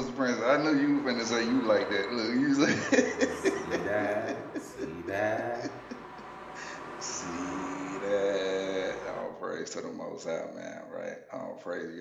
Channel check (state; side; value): identical; both; correlation 1.00